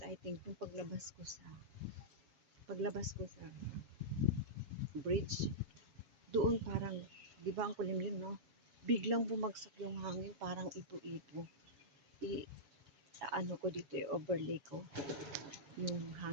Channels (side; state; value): left; late; 7.3 ms